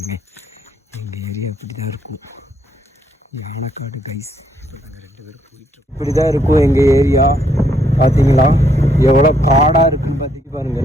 எங்கள் ஏரியா இப்படி தான் இருக்கும், யானைக்காடு கைஸ். இப்போ நாங்கள் 2 பேரும் போயிட்டுருக்கோம். இப்படி தான் இருக்கும் எங்கள் ஏரியா. பார்த்தீங்களா எவ்வளோ காடாக இருக்குன்னு பார்த்திட்டு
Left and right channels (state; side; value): normal; both; correlation 0.71